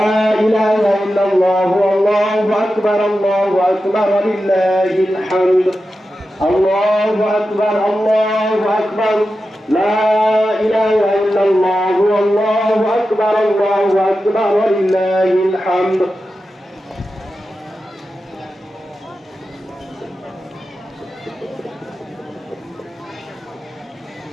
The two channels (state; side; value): normal; both; correlation 0.91